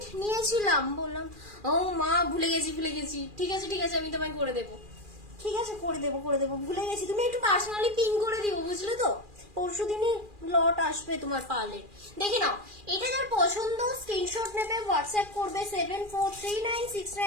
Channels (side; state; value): left; late; 2.4 ms